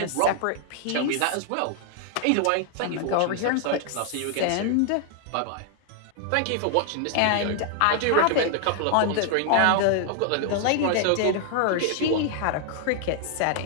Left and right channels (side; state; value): both; different; correlation 0.00